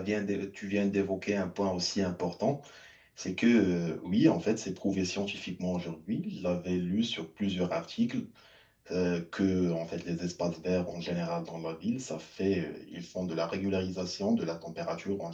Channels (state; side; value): identical; both; correlation 1.00